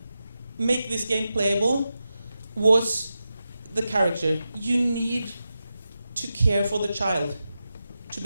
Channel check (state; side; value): inverted; both; correlation -0.91